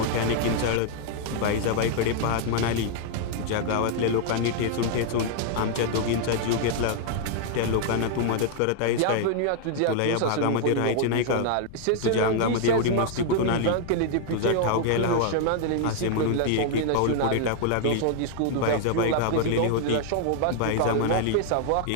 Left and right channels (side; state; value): both; different; correlation 0.00